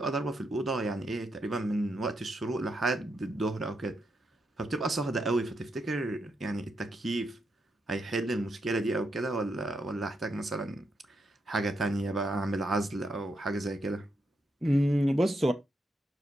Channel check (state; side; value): normal; both; correlation 0.81